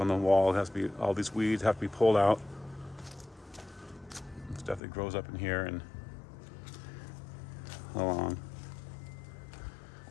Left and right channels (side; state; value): right; drops out; at 4.8 s